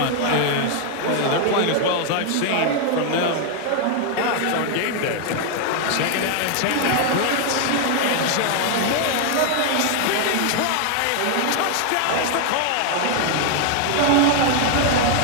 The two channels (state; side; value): different; both; correlation 0.00